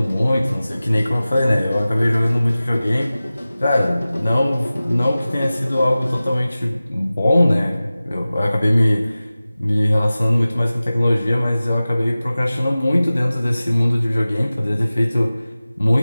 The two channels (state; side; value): inverted; both; correlation -0.97